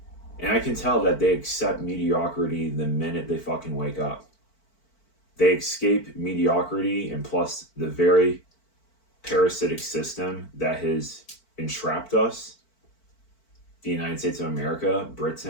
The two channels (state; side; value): late; right; 4.5 ms